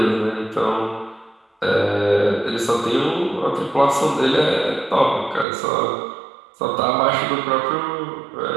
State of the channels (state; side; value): drops out; left; at 5.5 s